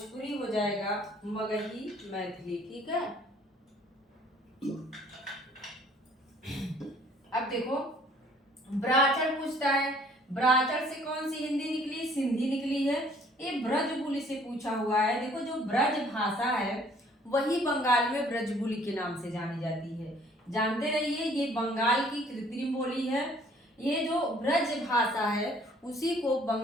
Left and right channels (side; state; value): both; normal; correlation 0.58